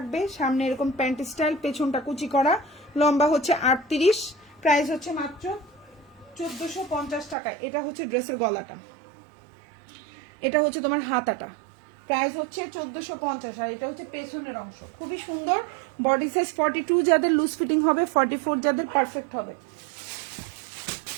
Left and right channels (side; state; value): left; drops out; at 7.4 s